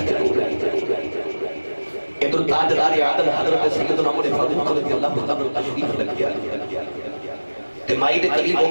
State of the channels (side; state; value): both; inverted; correlation -1.00